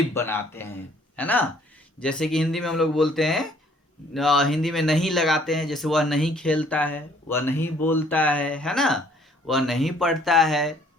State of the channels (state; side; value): normal; both; correlation 0.60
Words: बनाते हैं, है ना। जैसे कि हिंदी में हम लोग बोलते हैं, हिंदी में नहीं लगाते हैं, जैसे वह नहीं खेलता है, वह नहीं बोलता है ना, वह नहीं पढ़ता है